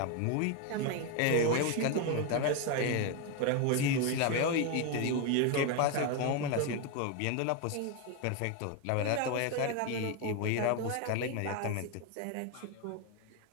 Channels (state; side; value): different; both; correlation 0.02